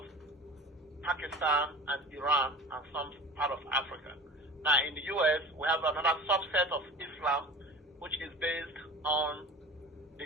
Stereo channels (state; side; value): normal; both; correlation 0.37